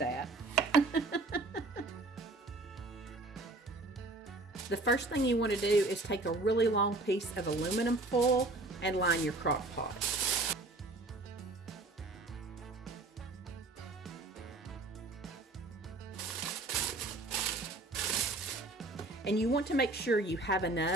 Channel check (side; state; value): left; quieter; 3.0 dB